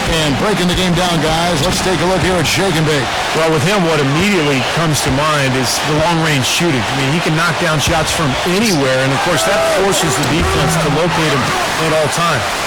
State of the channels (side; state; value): both; identical; correlation 1.00